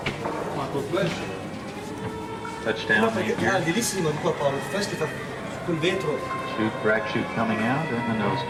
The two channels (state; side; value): identical; both; correlation 1.00